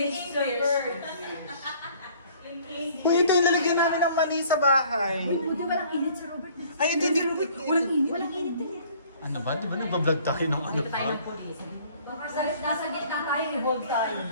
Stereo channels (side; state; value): both; inverted; correlation -0.55